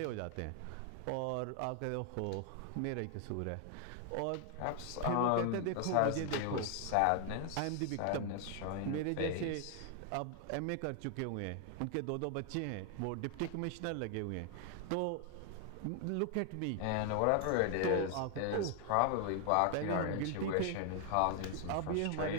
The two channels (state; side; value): different; both; correlation 0.00